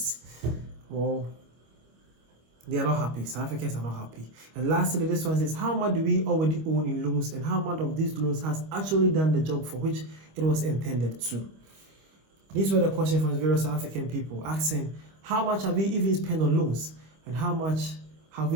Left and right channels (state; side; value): late; left; 25 ms